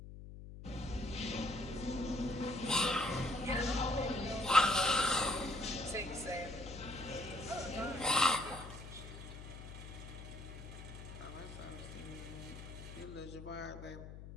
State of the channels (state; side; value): noise; left; hum, 12 dB below the sound